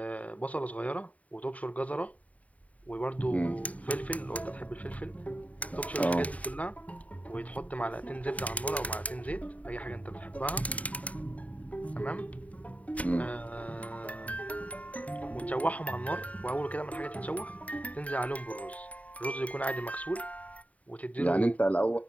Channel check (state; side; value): late; right; 0.069 ms